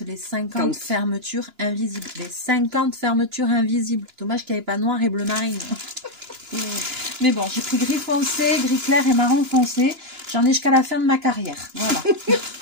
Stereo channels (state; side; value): late; left; 2.9 ms